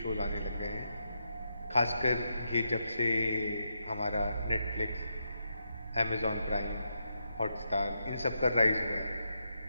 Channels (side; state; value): both; inverted; correlation -0.83